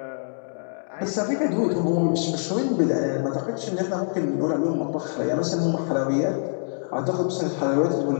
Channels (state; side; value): silent; right; digital silence